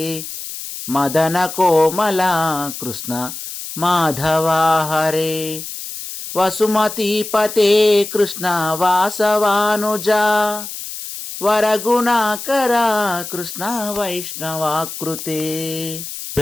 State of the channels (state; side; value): noise; left; hiss, 9 dB below the sound